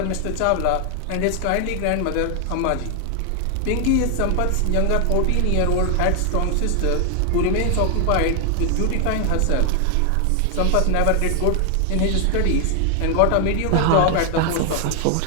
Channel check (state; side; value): different; both; correlation 0.00